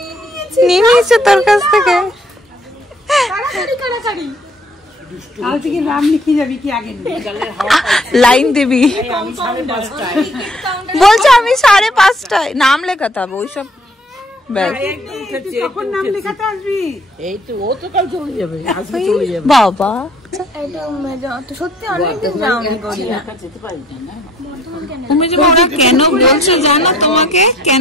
নিয়ে নিয়েছে তোর কাছ থেকে। লাইন দিবি বলছে, আমি 5:30 নাম লেখাতে হবে ওইসব। বাবা তুমি যে ওরা কেন বলছে জানো, তোমাকে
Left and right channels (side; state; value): both; normal; correlation 0.60